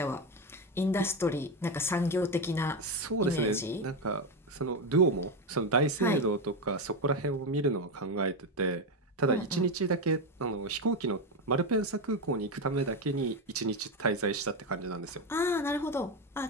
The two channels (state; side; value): normal; both; correlation 0.12